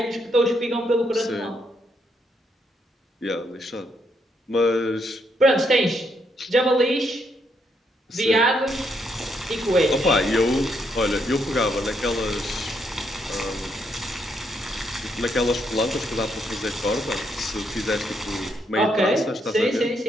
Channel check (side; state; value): both; normal; correlation 0.76